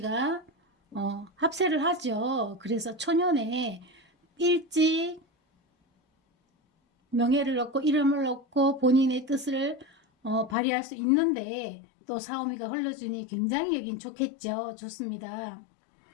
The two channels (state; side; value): drops out; right; at 10.6 s